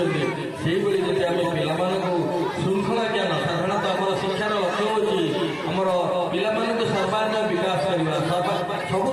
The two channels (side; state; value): both; identical; correlation 1.00